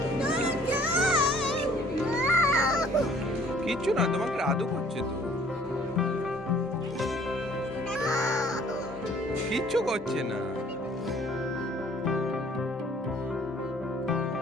কিচ্ছু না, তোমাকে আদু করছে তো, কিচ্ছু করছে না।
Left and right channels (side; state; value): both; normal; correlation 0.57